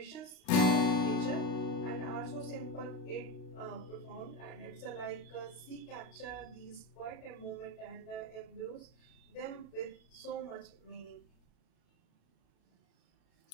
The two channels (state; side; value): late; right; 38 ms